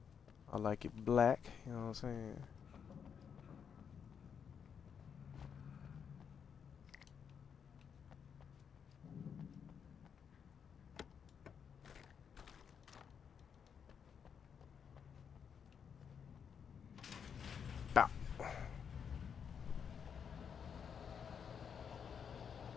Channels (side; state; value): right; quieter; 7.2 dB